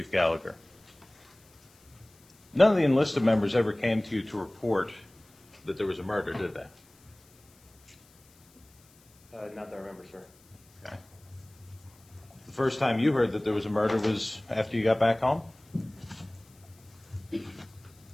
Gallagher. None of the enlisted members ever came to you to report that there was a murder, did they? Not that I remember, sir. Okay. The first time you heard that there was a murder was after you got back home? Well,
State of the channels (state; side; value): noise; left; hiss, 29 dB below the sound